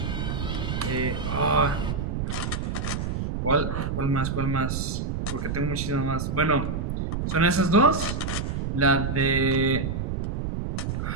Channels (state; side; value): noise; right; rumble, 2 dB below the sound